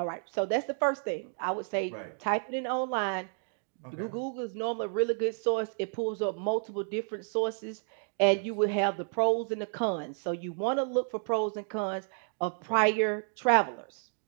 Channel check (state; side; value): silent; left; 57 dB below the other